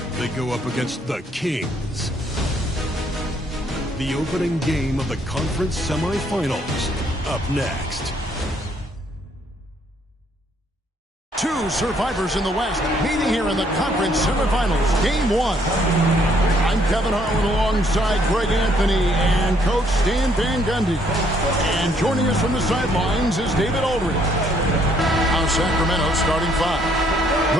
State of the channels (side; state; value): both; normal; correlation 0.67